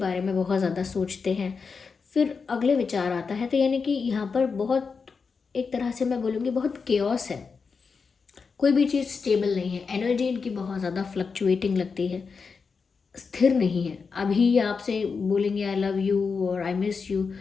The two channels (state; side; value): quieter; right; 5.2 dB